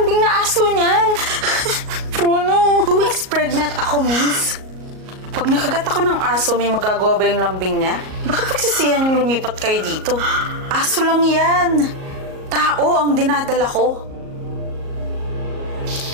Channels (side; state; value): left; late; 38 ms